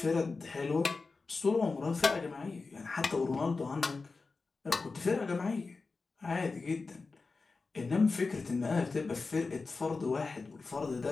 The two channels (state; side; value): quieter; right; 4.1 dB